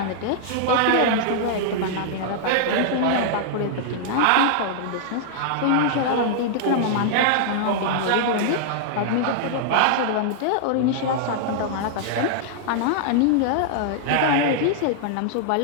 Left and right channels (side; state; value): both; different; correlation -0.01